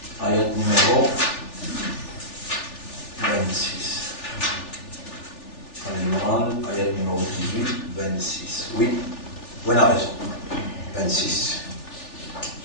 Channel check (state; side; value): late; right; 3.4 ms